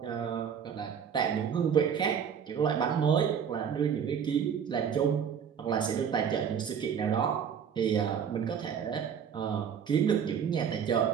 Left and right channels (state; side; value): quieter; left; 7.6 dB